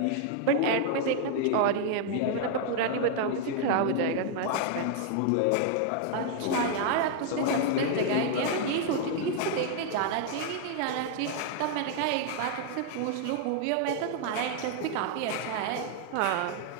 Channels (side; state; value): both; different; correlation 0.00